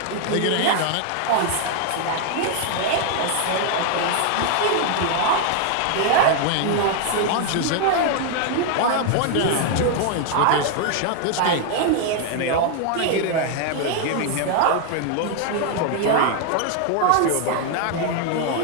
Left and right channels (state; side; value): different; both; correlation 0.00